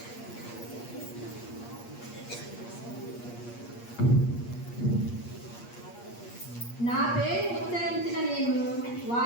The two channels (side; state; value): right; late; 8.5 ms